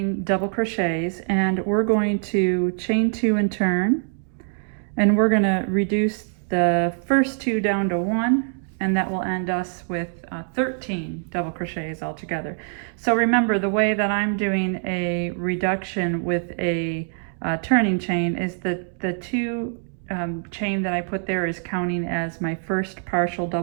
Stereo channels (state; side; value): silent; left; 57 dB below the other